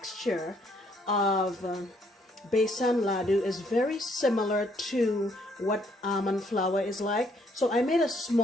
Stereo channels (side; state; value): both; normal; correlation 0.68